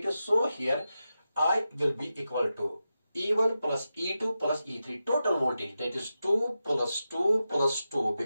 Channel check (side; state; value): both; inverted; correlation -0.91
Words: so here I will be equal to E1 plus E2 plus E3, total voltage, that is 2 plus 2 plus 2,